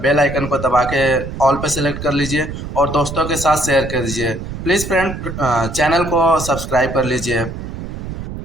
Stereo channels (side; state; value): right; noise; rumble, 8 dB below the sound